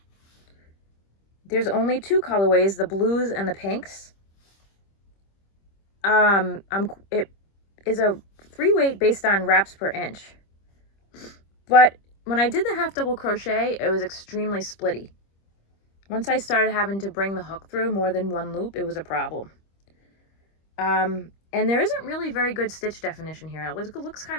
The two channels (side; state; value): right; late; 25 ms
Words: There's only 2 colorways, the blues and the pinks. It is a 3 weight based on wraps per inch. But when I did the half double crochet, it was extremely splitty. Once I started having to bring the hook through more than one loop, it was a problem. And there isn't really very good stitch definition here. It looks